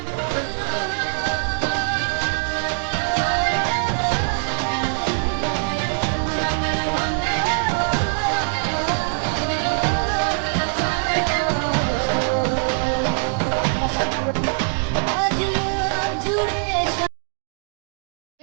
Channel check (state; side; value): silent; left; 64 dB below the other